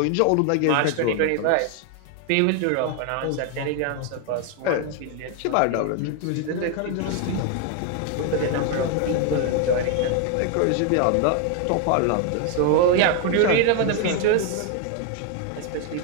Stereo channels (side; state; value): both; different; correlation 0.01